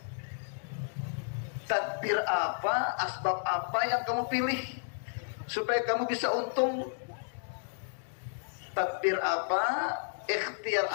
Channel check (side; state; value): right; silent; digital silence